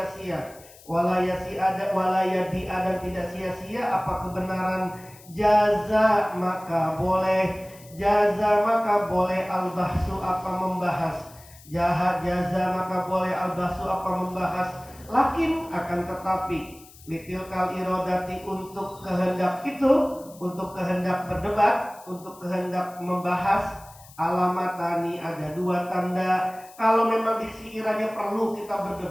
Walayadi'a, dan tidak sia-sia apa kebenaran. Jaza, maka boleh. Al-bahsu, apa membahas. Jaza, maka boleh. Al-bahsu, apa membahas. Lakin, akan tetapi. Litilkal irodati, untuk kehendak itu. Untuk kehendak berdebat. Untuk kehendak membahas. Alamatani, ada 2 tanda. Kalau memang sekiranya perlu kita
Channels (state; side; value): noise; left; hiss, 22 dB below the sound